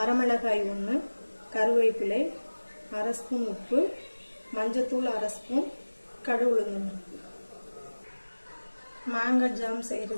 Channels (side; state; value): both; inverted; correlation -1.00